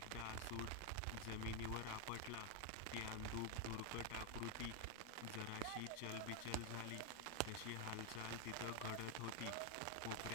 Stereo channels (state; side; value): different; both; correlation 0.01